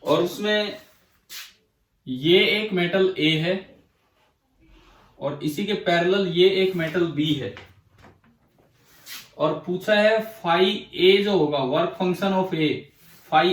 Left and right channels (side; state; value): both; identical; correlation 1.00